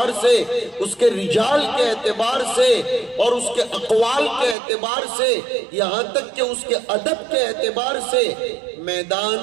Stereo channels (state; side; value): drops out; left; at 4.5 s